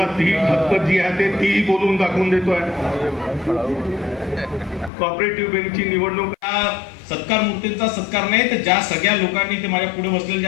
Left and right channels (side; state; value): right; drops out; at 4.9 s